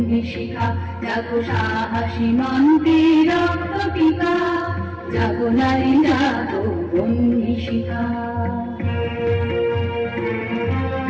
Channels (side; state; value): both; identical; correlation 1.00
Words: শিখা, জাগো সাহসী মন্ত্রে রক্ত টিকা। জাগো নারী জাগো বন্ধি শিখা।